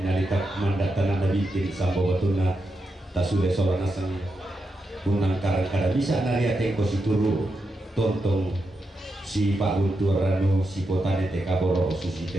nalitak mandat tanah nabi kiri sambo batuna tasule solanasang unang karang-karang bisa nariate kosituru tontong si Pak Guntur Ranu si potane teka boro susi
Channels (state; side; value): normal; both; correlation 0.86